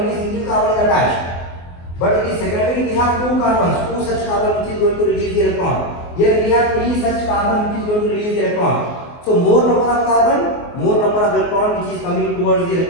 single carbon is attached, but in secondary we have 2 carbons, 2 such carbon which is going to release the electron. Here we have 3 such carbon which is going to release the electron. So more number of carbon, more number of electron which is coming towards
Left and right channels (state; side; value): late; right; 24 ms